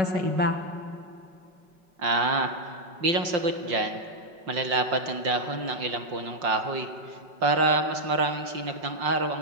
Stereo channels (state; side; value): late; left; 5.7 ms